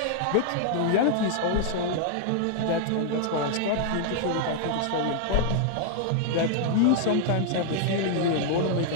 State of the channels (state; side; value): different; both; correlation -0.01